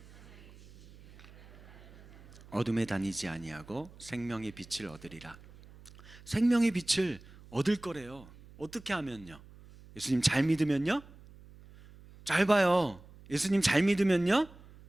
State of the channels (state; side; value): noise; right; hum, 21 dB below the sound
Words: 어둠에 다니지 아니하고 생명의 빛을 얻으리라. 생명의 빛을 얻을 거래요. 어떻게 하면요? 예수님 잘 믿으면요? 잘 봐요. 예수님 잘 믿으면요?